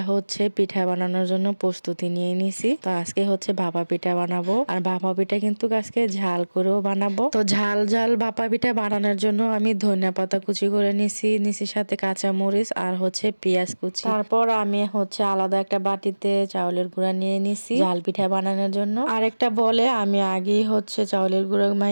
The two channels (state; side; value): inverted; both; correlation -1.00